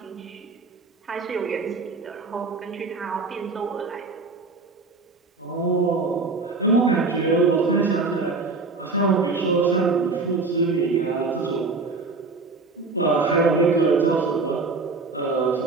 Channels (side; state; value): left; quieter; 3.9 dB